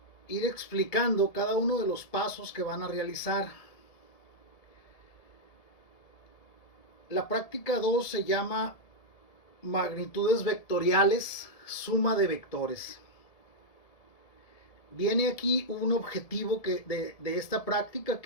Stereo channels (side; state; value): right; late; 1.7 ms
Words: ir explicando cada uno de los pasos que van a realizar. La práctica 2 se llama magnitudes vectoriales, suma de vectores. Viene aquí un objetivo de esta práctica,